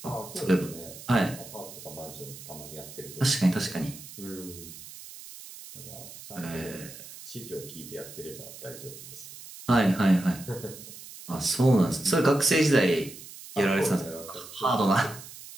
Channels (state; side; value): noise; right; hiss, 15 dB below the sound